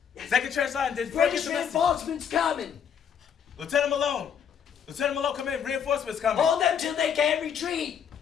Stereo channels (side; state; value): right; quieter; 7.8 dB